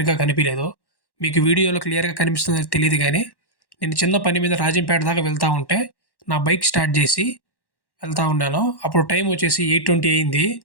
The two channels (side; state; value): right; late; 1.1 ms